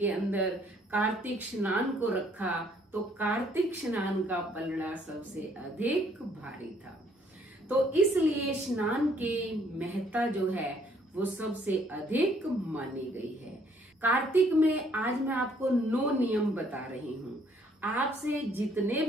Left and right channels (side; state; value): both; normal; correlation 0.64